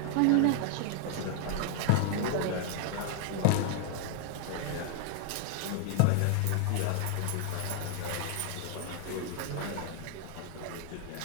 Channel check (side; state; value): both; different; correlation 0.00